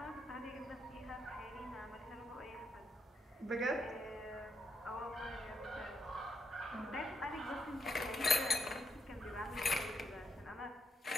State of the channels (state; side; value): normal; both; correlation 0.80